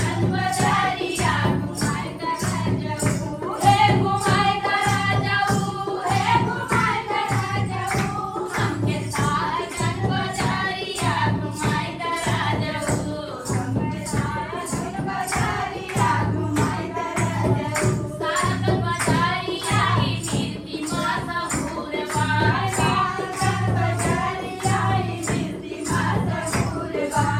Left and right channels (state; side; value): identical; both; correlation 1.00